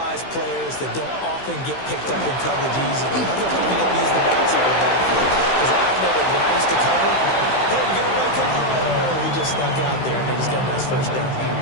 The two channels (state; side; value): late; right; 15 ms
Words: players that don't often get picked up in coverage easily. I'm not going to use the backside of the backfield because I know that when I used to cover, hey, we got a back cover. Oh, he just snuck out there and they just got a nice first down.